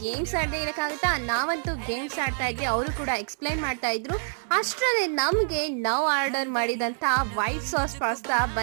ಗೇಮ್ಸ್ ಆಡದೆ ಇರಕ್ಕಾಗುತ್ತಾ? ನಾವಂತೂ ಗೇಮ್ಸ್ ಆಡ್ತಾ ಇದ್ವಿ, ಅವರು ಕೂಡ ಎಕ್ಸ್ಪ್ಲೈನ್ ಮಾಡ್ತಾ ಇದ್ರು. ಅಷ್ಟರಲ್ಲಿ ನಮ್ಗೆ ನಾವು ಆರ್ಡರ್ ಮಾಡಿದಂತ ವೈಟ್ ಸಾಸ್ ಪಾಸ್ತಾ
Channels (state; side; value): silent; left; 57 dB below the other